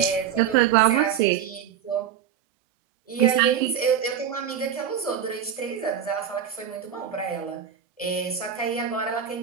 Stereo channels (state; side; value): quieter; left; 8.7 dB